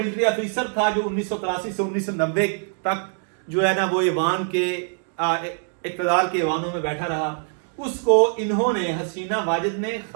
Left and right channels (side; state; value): left; silent; 62 dB below the other